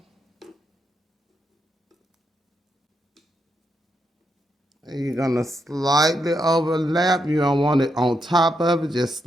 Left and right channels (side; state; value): both; normal; correlation 0.81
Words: And you're gonna slightly overlap. You don't want it on top of it, just